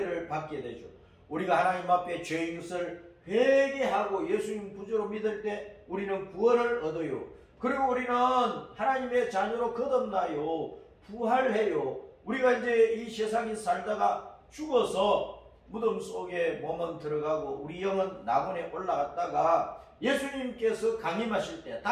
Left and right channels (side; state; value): both; identical; correlation 1.00